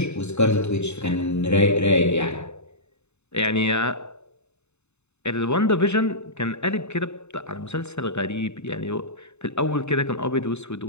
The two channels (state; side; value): late; right; 0.81 ms